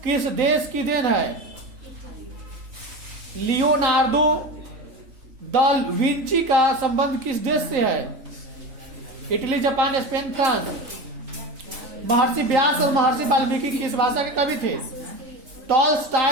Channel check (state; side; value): late; left; 3.8 ms